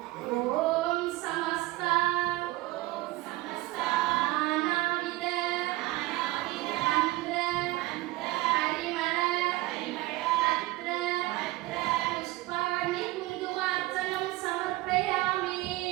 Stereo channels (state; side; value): quieter; left; 19.2 dB